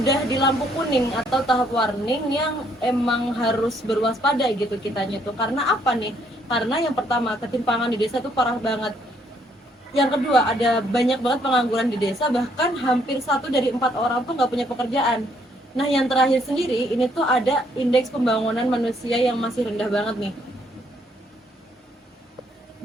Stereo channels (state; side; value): normal; both; correlation 0.69